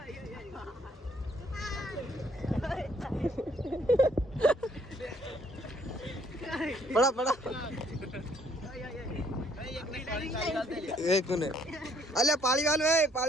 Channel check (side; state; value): both; normal; correlation 0.64